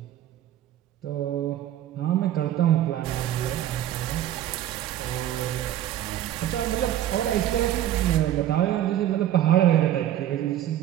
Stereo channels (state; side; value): quieter; left; 12.1 dB